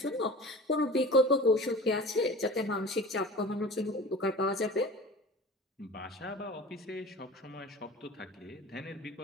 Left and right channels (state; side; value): normal; both; correlation 0.37